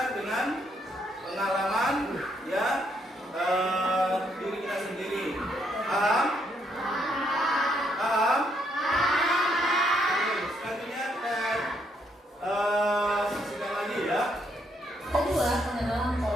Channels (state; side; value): normal; both; correlation 0.73